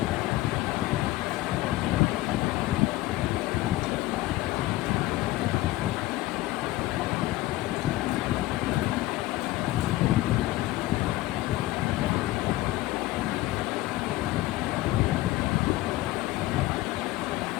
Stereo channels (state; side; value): quieter; right; 17.5 dB